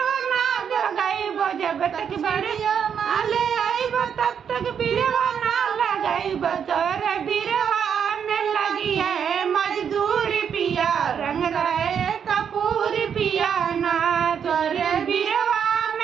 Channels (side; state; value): left; quieter; 7.7 dB